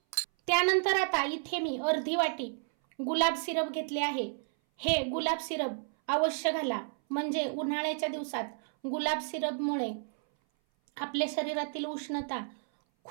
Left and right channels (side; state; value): left; silent; 57 dB below the other